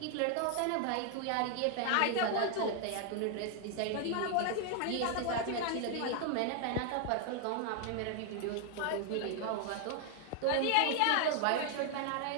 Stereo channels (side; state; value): both; different; correlation 0.00